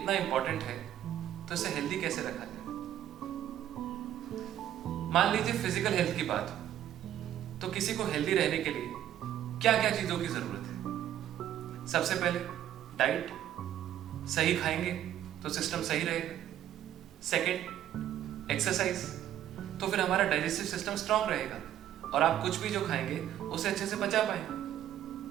इंपॉर्टेंट है तो इसे हेल्दी कैसे रखा जाए। मान लीजिए फिजिकल हेल्थ की बात हो तो किसी को हेल्दी रहने के लिए क्या क्या चीजों की जरूरत है। सबसे पहले डाइट, सही खाएंगे तो सिस्टम सही रहेगा। सेकंड एक्सरसाइज, तो फिर हमारा डाइजेस्टिव सिस्टम स्ट्रांग रहेगा और आप कुछ भी जो खाएंगे उसे अच्छे से पचा पाएंगे।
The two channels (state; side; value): quieter; left; 11.6 dB